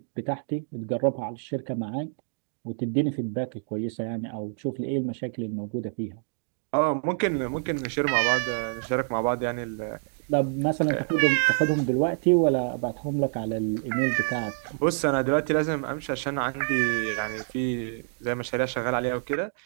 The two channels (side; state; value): left; silent; digital silence